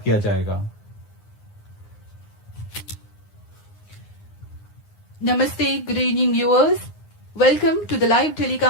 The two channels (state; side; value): late; right; 9.7 ms